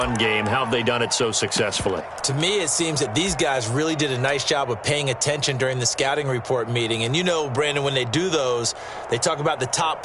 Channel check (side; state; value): both; identical; correlation 1.00